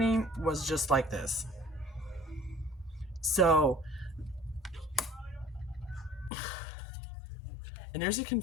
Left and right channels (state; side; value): drops out; right; at 6.3 s